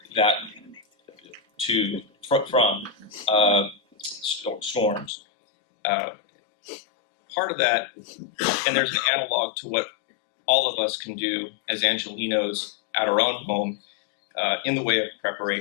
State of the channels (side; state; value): right; drops out; at 5.1 s